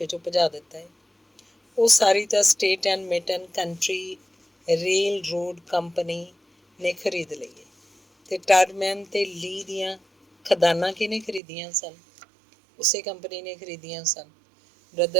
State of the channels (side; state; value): left; drops out; at 11.4 s